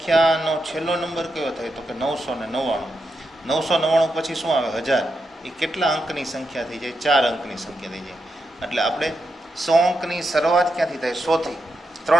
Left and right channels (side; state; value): both; normal; correlation 0.85